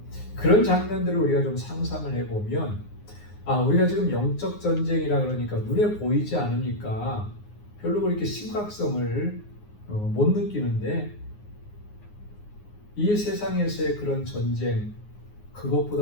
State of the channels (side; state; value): right; late; 9.6 ms